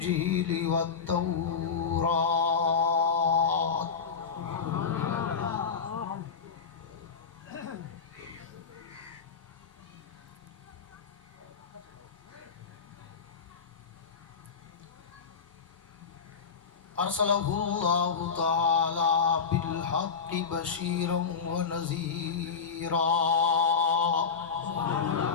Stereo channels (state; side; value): quieter; right; 5.8 dB